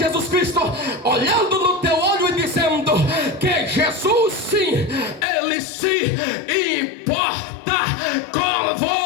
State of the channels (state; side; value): drops out; right; at 5.2 s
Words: Cristo, olhando no teu olho e dizendo que Jesus, sim, Ele se importa com